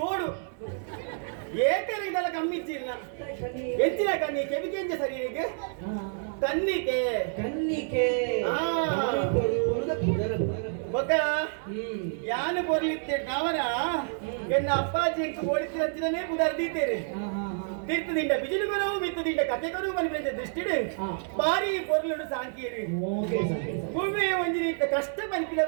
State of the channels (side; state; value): left; silent; 59 dB below the other